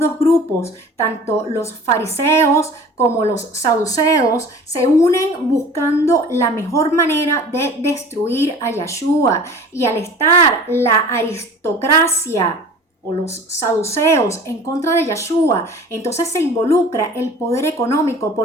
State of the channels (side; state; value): both; normal; correlation 0.43